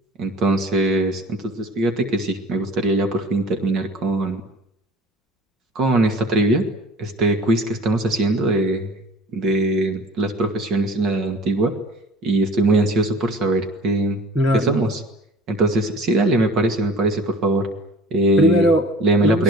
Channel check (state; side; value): normal; both; correlation 0.44